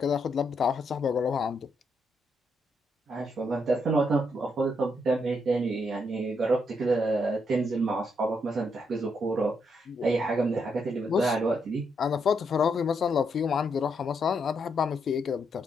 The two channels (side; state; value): both; normal; correlation 0.78